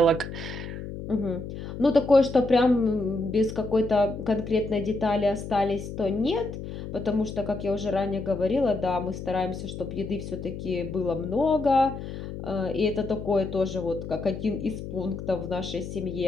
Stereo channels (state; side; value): noise; left; hum, 9 dB below the sound